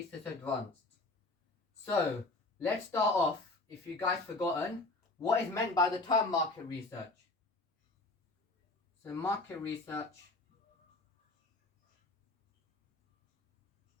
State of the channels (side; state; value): right; quieter; 3.1 dB